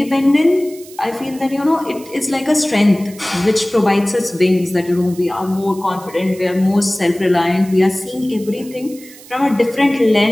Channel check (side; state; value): right; noise; hiss, 20 dB below the sound